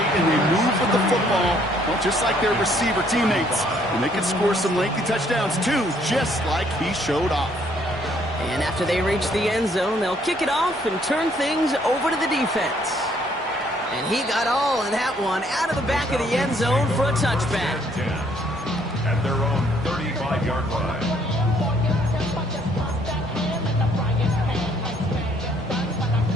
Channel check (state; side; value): normal; both; correlation 0.65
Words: and they move with the football, well, just like their receiver teammates. And they can score some lengthy touchdowns too, just like he showed off. And after they reach the end zone, they'll kick it off and turn things over to the defense. And he got all of that one out of the back of the end zone for a touchback. At their own 35-yard line.